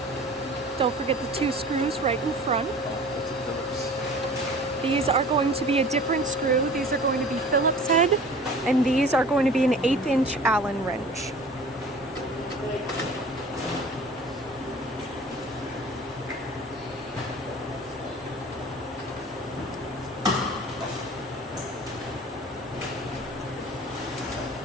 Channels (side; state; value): both; normal; correlation 0.44